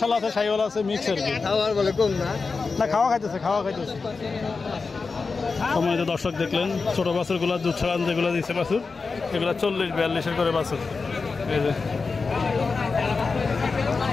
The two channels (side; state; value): right; quieter; 4.4 dB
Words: আছে, সাইওয়াল আছে, মিক্স আর কি। না খাওয়া খাইতেছে। সম্মানিত দর্শক দেখলেন ছোটো বাছুরগুলো দুধ ছাড়ান যেগুলো দিচ্ছে বাছুর, এগুলো 40-42 করে বাছুর। এই যে